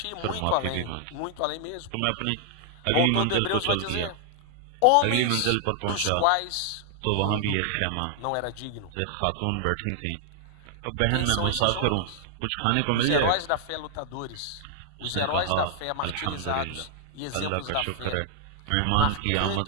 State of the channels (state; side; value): different; both; correlation 0.00